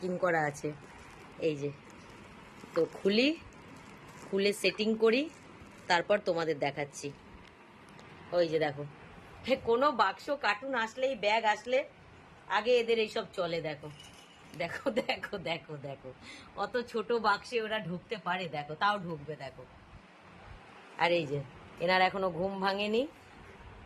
করা আছে। এই যে তো খুলি, খুলে সেটিং করি, তারপর তোমাদের দেখাচ্ছি। ওই যে দেখো, কোনো বাক্স কার্টুন আসলেই, ব্যাগ আসলে আগে এদের এইসব চলে। দেখো দেখো দেখো দেখো দেখো, অত ছোট বাক্সে ওরা ঢুকতে পারে, দেখো তাও ঢুকবে দেখো। আর এই যে এনার এখনো ঘুম ভাঙেনি।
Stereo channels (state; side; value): identical; both; correlation 1.00